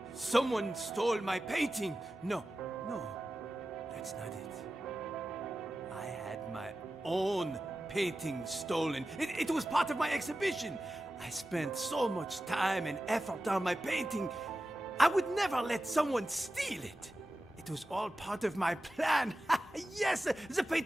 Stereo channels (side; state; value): both; normal; correlation 0.94